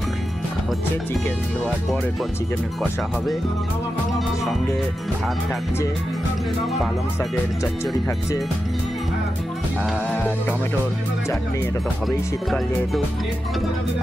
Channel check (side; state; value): both; normal; correlation 0.90